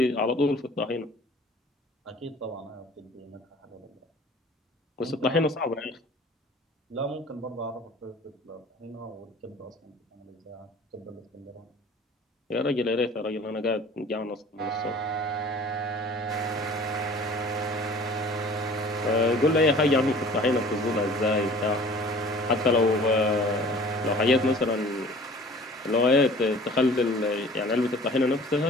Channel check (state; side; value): normal; both; correlation 0.47